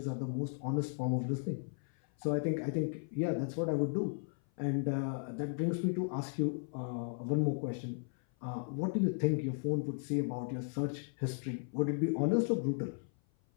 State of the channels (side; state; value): right; silent; 54 dB below the other